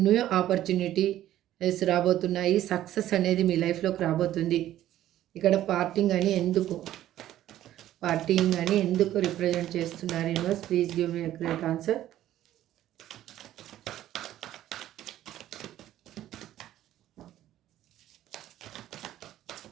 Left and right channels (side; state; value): left; quieter; 13.0 dB